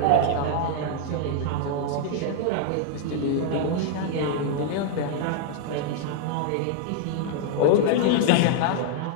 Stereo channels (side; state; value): both; different; correlation 0.00